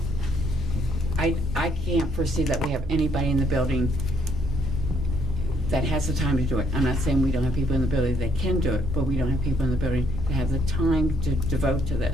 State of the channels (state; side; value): normal; both; correlation 0.70